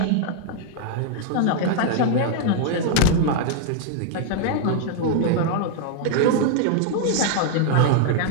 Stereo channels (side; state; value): both; different; correlation -0.01